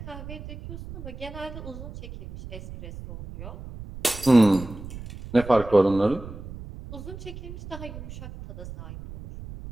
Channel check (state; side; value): noise; right; rumble, 12 dB below the sound